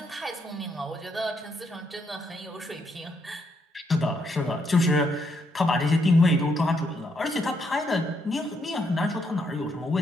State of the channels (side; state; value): both; normal; correlation 0.76